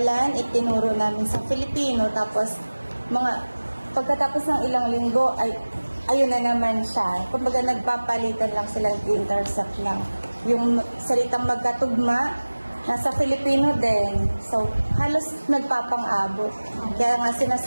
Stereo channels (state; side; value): inverted; both; correlation -1.00